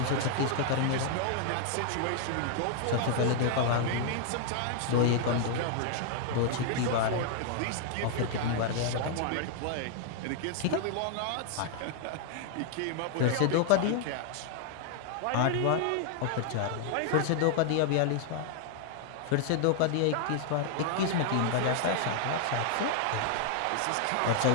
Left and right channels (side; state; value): both; different; correlation -0.01